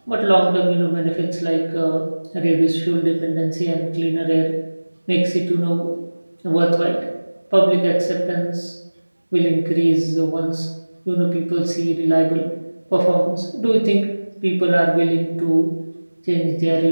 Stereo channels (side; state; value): both; inverted; correlation -1.00